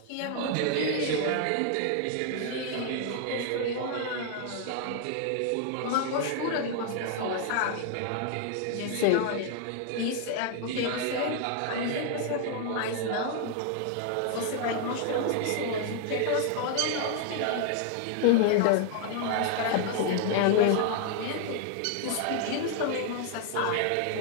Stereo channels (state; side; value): different; both; correlation 0.00